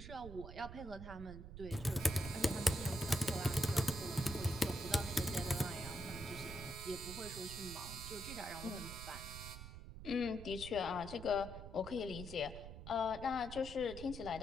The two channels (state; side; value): noise; right; rumble, 10 dB below the sound